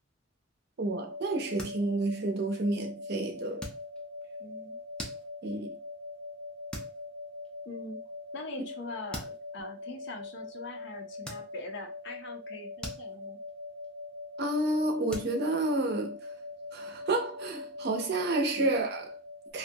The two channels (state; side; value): normal; both; correlation 0.25